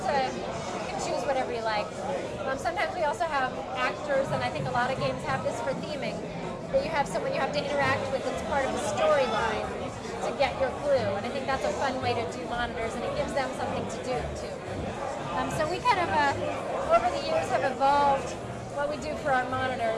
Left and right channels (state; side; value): identical; both; correlation 1.00